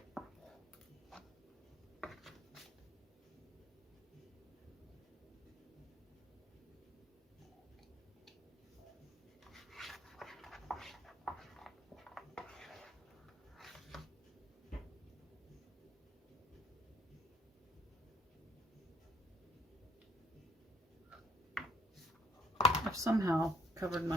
I've somehow covered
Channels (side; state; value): both; normal; correlation 0.62